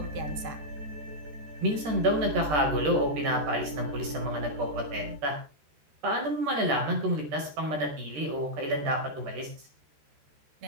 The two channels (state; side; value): late; left; 13 ms